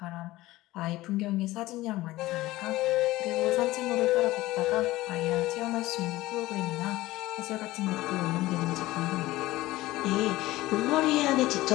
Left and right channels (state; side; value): quieter; right; 17.8 dB